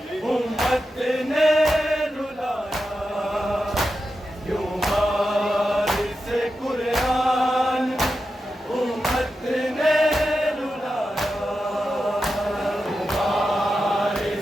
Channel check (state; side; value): normal; both; correlation 0.90